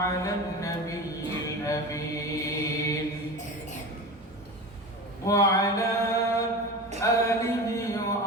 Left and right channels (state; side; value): normal; both; correlation 0.29